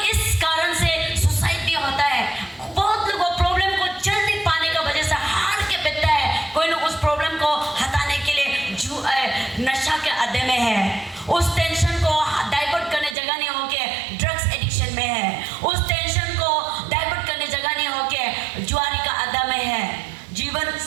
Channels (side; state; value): left; drops out; at 13.2 s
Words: इस कारण से सुसाइड भी होता है, बहुत लोग प्रॉब्लम को चल नहीं पाने का वजह से हार के बैठता है। कोई लोग उस प्रॉब्लम को हटाने के लिए नशा के अड्डे में है, उस टेंशन को डाइवर्ट करने जगह नहीं होके ड्रग्स एडिक्शन में है, उस टेंशन को डाइवर्ट करने जगह नहीं होके जुआरी का अड्डा में है। जीवन